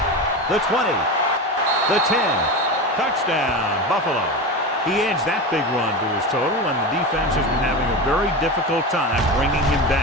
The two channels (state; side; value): normal; both; correlation 0.23